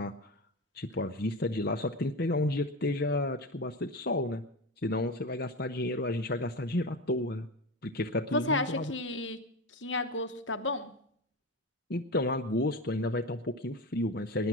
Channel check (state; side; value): normal; both; correlation 0.23